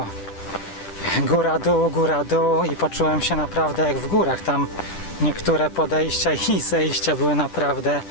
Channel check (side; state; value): right; late; 10 ms